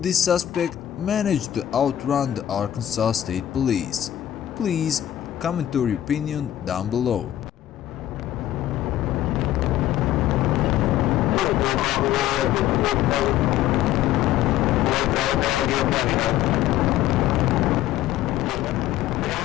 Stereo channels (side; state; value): right; quieter; 12.5 dB